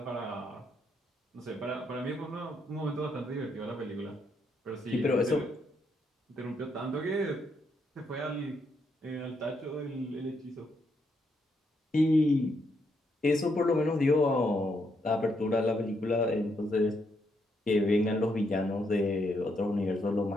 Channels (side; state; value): both; normal; correlation 0.77